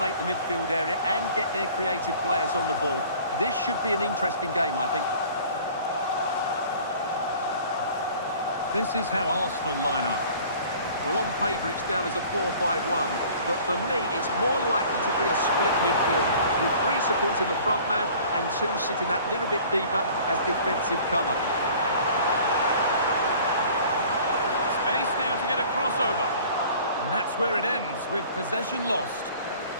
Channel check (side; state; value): both; inverted; correlation -0.49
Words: the midfield area and get their creative players on the ball. This should be an interesting game, I think. This is how Arsenal line up. Well, on paper it's down as a 4-5-1, but for me it's more likely to be a split midfield, with three supporting the front man and two sitting that little bit deeper as defensive cover. Space now to get a crossover. And that's where it ends, with possession lost.